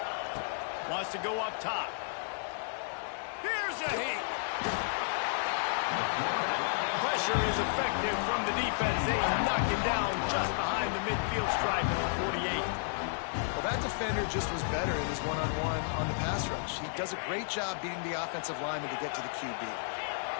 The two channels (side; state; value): right; silent; digital silence